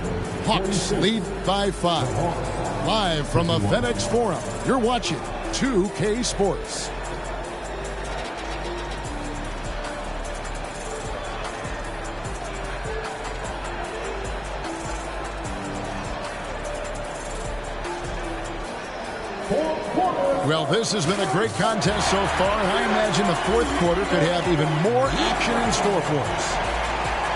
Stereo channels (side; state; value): both; identical; correlation 1.00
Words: Hawks lead by 5. Live from the FedEx Forum, you're watching 2K Sports. Well, this has been a great contest so far, and I imagine the 4th quarter could have even more action in store for us.